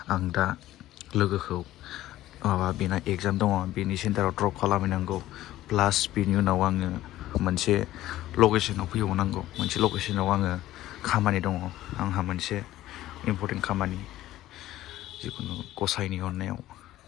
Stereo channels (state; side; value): quieter; right; 14.8 dB